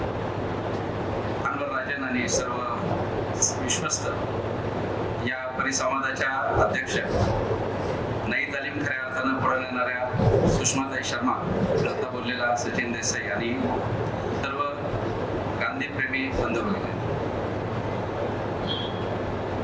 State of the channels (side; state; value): both; identical; correlation 1.00